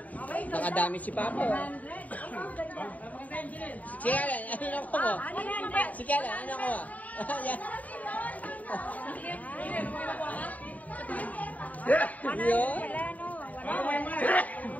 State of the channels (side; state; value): right; late; 0.073 ms